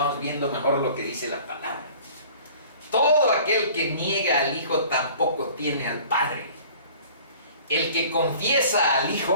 viendo mejor lo que dice la palabra. Todo aquel que niega al Hijo tampoco tiene al Padre. El que confiesa al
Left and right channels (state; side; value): inverted; both; correlation -0.48